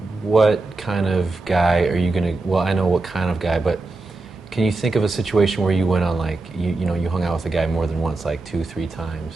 what kind of guy are you gonna? Well, I know what kind of guy, but can you think of a situation where you went on like you hung out with a guy more than once, like 2, 3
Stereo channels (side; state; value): left; quieter; 3.3 dB